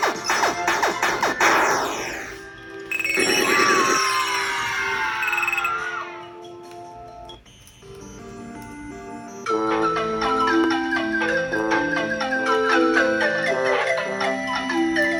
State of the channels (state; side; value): identical; both; correlation 1.00